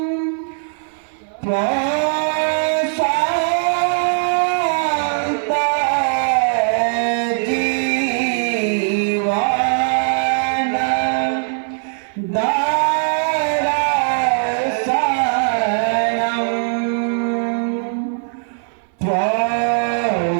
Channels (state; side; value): silent; left; digital silence